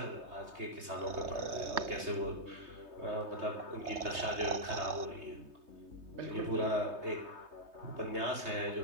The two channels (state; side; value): late; left; 3.2 ms